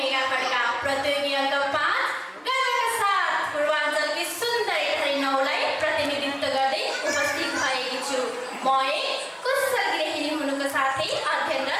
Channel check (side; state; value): both; identical; correlation 1.00